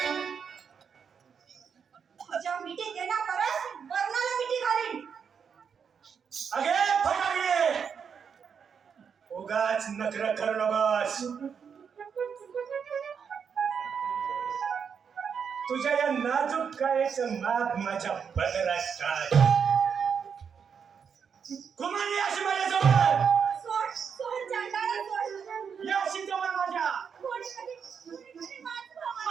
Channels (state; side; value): quieter; left; 6.8 dB